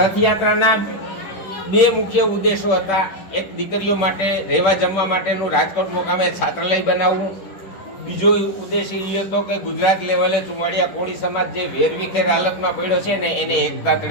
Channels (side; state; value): right; late; 10 ms